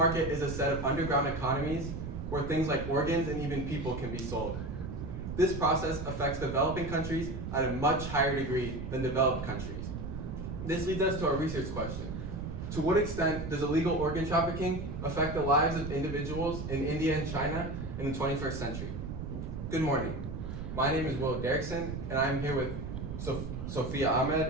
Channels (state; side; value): noise; right; rumble, 6 dB below the sound